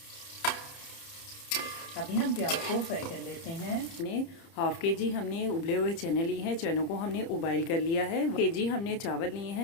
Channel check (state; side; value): late; right; 30 ms